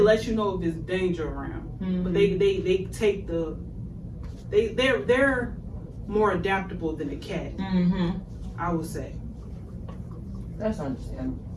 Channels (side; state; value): both; identical; correlation 1.00